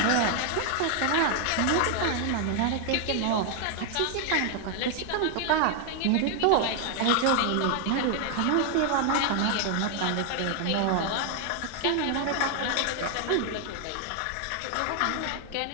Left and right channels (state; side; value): different; both; correlation 0.01